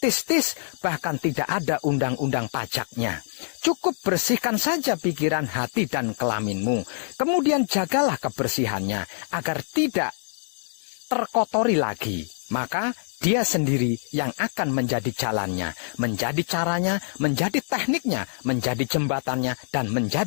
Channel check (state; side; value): silent; right; digital silence